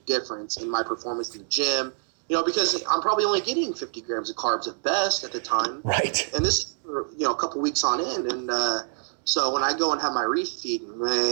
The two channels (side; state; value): left; silent; 61 dB below the other